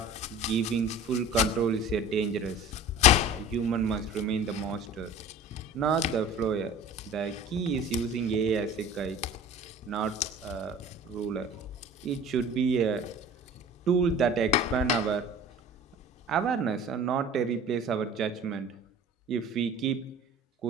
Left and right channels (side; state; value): both; normal; correlation 0.41